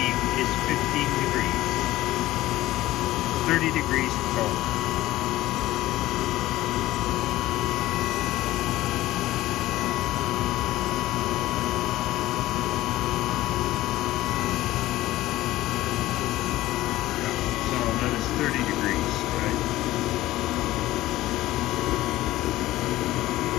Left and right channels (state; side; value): quieter; right; 16.3 dB